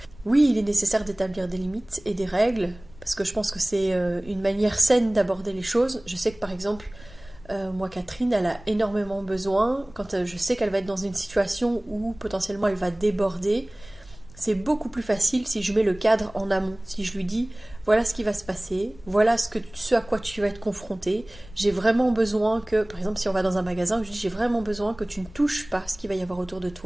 Oui, il est nécessaire d'établir des limites et des règles, parce que je pense que c'est une manière saine d'aborder les choses. Je sais que par exemple, moi Catherine, elle a énormément besoin, quand je sais qu'elle va être dans une situation où potentiellement elle va déborder, c'est beaucoup plus facile si je mets le cadre en amont, si je lui dis voilà ce qui va se passer, voilà ce à quoi tu vas être confronté, j'ai vraiment besoin que, par exemple si on va dans un magasin, je dis j'ai vraiment besoin que tu ne touches pas ce qu'il va y avoir autour de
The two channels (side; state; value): left; noise; rumble, 21 dB below the sound